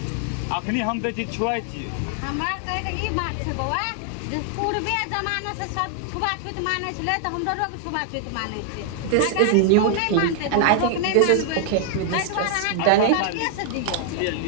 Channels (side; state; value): both; different; correlation 0.00